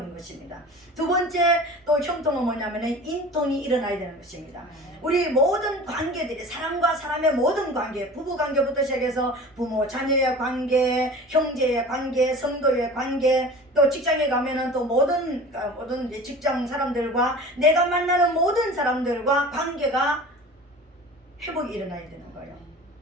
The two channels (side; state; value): both; normal; correlation 0.39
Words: 것입니다. 두 번째 또 형통은 뭐냐면은 인통이 일어나야 되는 것입니다. 우리 모든 관계들이 사람과 사람의 모든 관계, 부부 관계부터 시작해서 부모 자녀의 관계, 형제의 관계, 성도의 관계, 또 직장에 가면은 또 모든 직장 사람들과 내가 만나는 모든 사람들과 관계가 회복이 일어나야 되는 거예요.